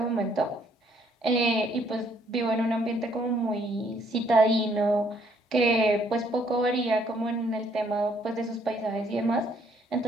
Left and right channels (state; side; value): normal; both; correlation 0.67